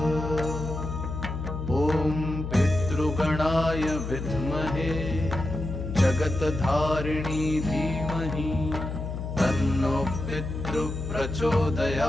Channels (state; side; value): noise; left; hum, 5 dB below the sound